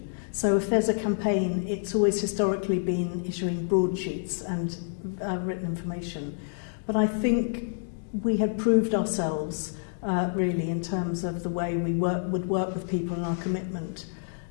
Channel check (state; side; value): silent; right; digital silence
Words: So if there's a campaign, it's always historically been issuing broadsheets and written information. But I think we had proved ourselves really in terms of the way we would work with people and our commitment.